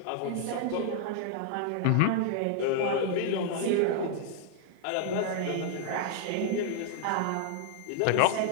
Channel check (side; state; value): both; different; correlation 0.00